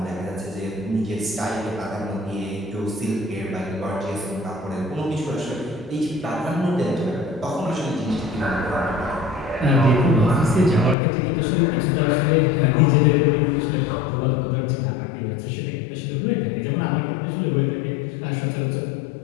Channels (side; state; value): right; drops out; at 11.0 s